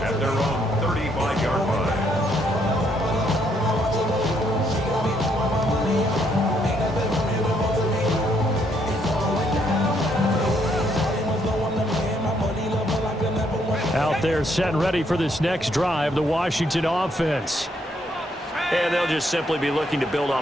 at their own 35-yard line. Out there set and ready for this next drive, the Washington offense. And they'll just simply be looking to build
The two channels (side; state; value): both; normal; correlation 0.72